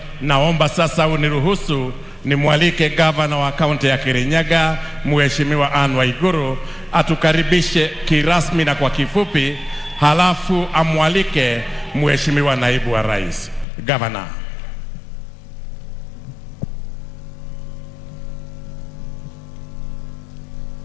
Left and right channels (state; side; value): drops out; right; at 13.7 s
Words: naomba sasa uniruhusu nimwalike gavana wa kaunti ya Kirinyaga, Mheshimiwa Anne Waiguru, atukaribishe kirasmi na kwa kifupi, halafu amwalike Mheshimiwa naibu wa Rais. Gavana.